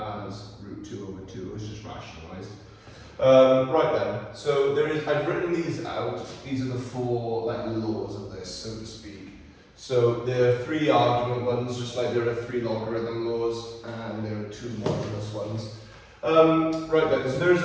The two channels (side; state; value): both; identical; correlation 1.00